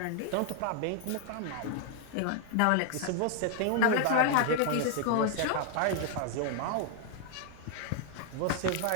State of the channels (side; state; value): both; different; correlation 0.00